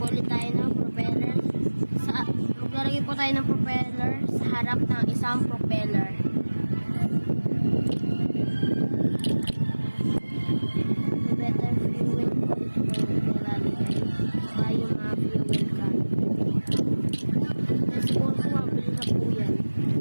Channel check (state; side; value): inverted; both; correlation -1.00